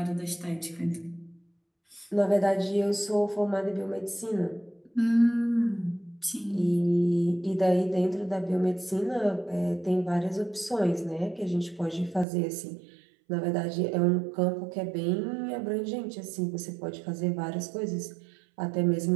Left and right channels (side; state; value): left; drops out; at 12.2 s